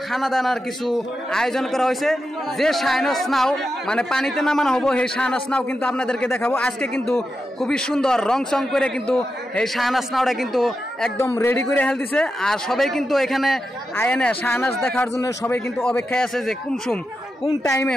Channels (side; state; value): both; normal; correlation 0.88